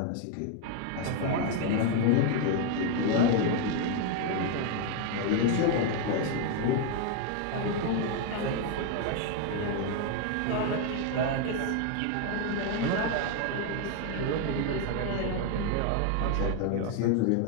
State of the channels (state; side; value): different; both; correlation 0.01